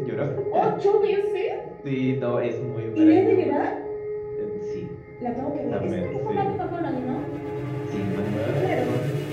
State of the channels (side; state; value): both; identical; correlation 1.00